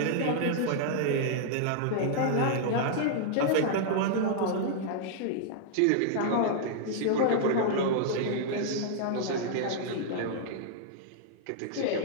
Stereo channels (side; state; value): both; different; correlation -0.01